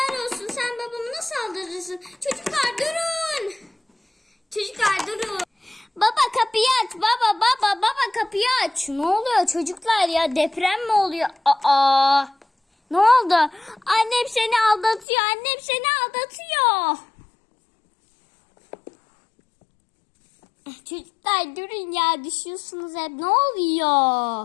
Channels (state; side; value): drops out; right; at 15.1 s